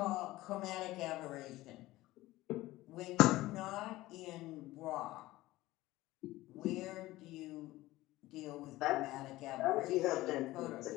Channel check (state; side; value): quieter; right; 17.7 dB